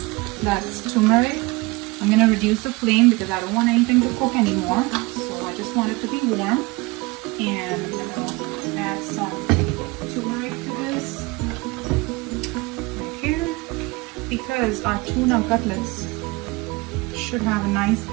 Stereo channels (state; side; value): quieter; left; 24.1 dB